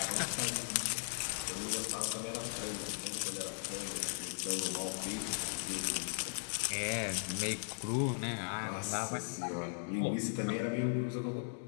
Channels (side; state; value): right; silent; digital silence